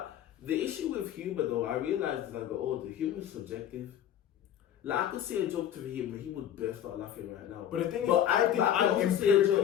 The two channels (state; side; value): quieter; right; 10.4 dB